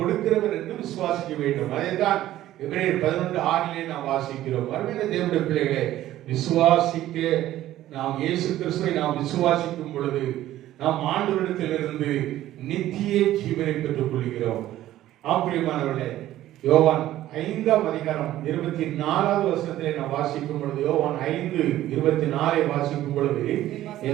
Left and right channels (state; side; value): quieter; left; 13.9 dB